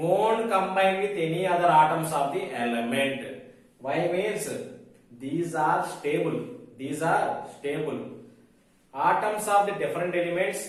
combine with any other atoms of the element. Why means these are stable. These are stable. Atoms of the different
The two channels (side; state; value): both; identical; correlation 1.00